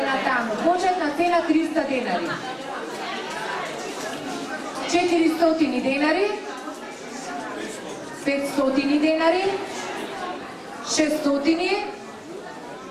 таму. Почетна цена 300 денари. 400 денари, 500 денари,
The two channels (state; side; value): identical; both; correlation 1.00